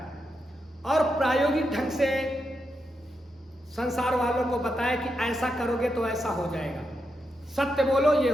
और प्रायोगिक ढंग से संसार वालों को बताया कि ऐसा करोगे तो ऐसा हो जाएगा, सत्य बोलो ये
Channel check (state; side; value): normal; both; correlation 0.85